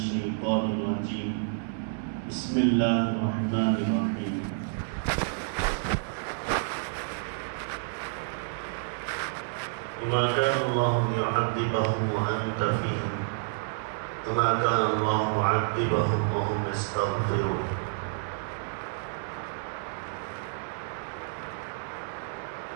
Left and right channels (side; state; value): left; silent; 58 dB below the other